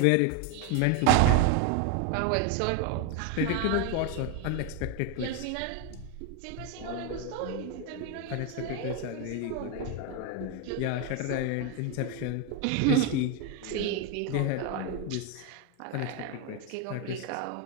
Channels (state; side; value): different; both; correlation 0.02